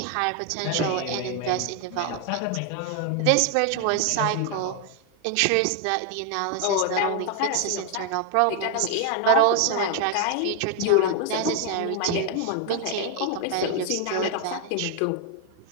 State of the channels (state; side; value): different; both; correlation 0.00